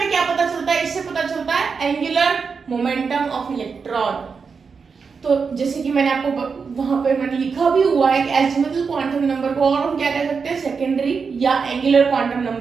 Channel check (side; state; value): left; quieter; 5.4 dB